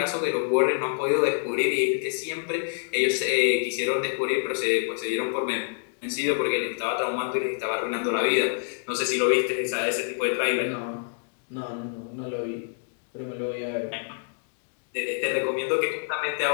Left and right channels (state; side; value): silent; right; digital silence